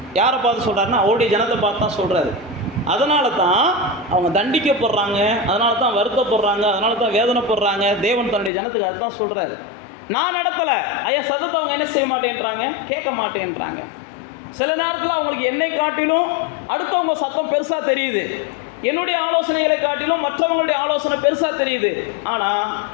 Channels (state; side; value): drops out; right; at 8.5 s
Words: யாரை பார்த்து சொல்கிறாருன்னா, அவருடைய ஜனத்தை பார்த்து தான் சொல்கிறாரு. அதனால தான் அவங்க தண்டிக்கப்படுறாங்க, அதனால தான் வருத்தப்படுறாங்க, அதனால தான் வேதனைப்படுறாங்க. தேவன் தன்னுடைய ஜனத்துக்கு அதை தான் சொல்கிறாரு. நான் நடத்தலை, ஐயா சத்தத்தை அவங்க என்ன செய்ய மாட்டேன்றாங்க, கேட்க மாட்டேன்றாங்க. சில நேரத்தில் அவங்களுக்கு என்னை காட்டிலும் அடுத்தவங்க சத்தம் பெருசாக தெரியுது. என்னுடைய ஆலோசனைகளை காட்டிலும் மற்றவங்களுடைய ஆலோசனை பெருசாக தெரியுது. ஆனால்